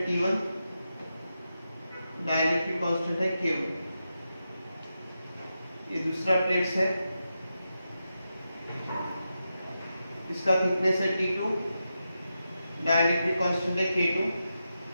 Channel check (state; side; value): inverted; both; correlation -0.88